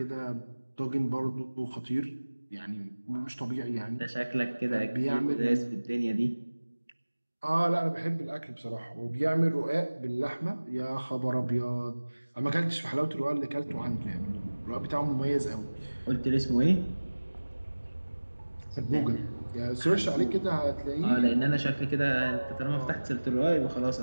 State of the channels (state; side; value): inverted; both; correlation -1.00